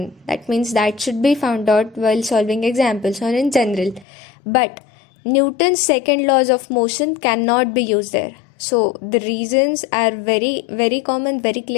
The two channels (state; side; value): drops out; right; at 4.0 s